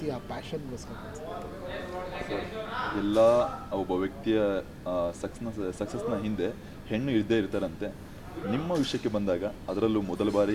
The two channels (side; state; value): both; identical; correlation 1.00